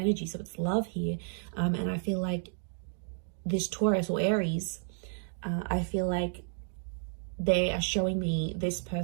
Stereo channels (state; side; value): silent; left; 57 dB below the other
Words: so it's love here. And I feel like this Taurus or Aries, I feel like they are showing me this